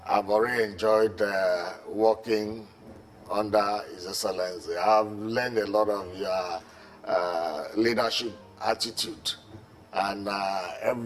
I've already enjoyed working under His Excellency. I've learned a lot of your leadership attitude and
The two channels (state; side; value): identical; both; correlation 1.00